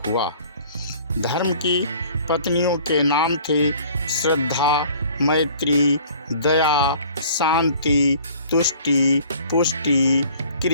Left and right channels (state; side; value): inverted; both; correlation -0.51